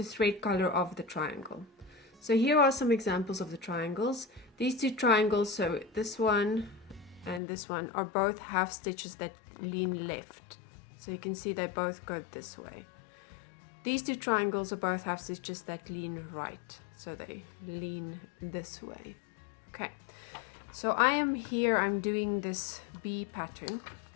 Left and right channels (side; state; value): right; drops out; at 7.4 s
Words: thread color of the triangle. So here are some examples of the triangles. These two triangles, so this one and this one, are both half stitches that lean left. So you can see they both go this way. These two triangles are both half stitches that lean right. So they lean this way. Okay, so I am here, I'm doing this bee pattern.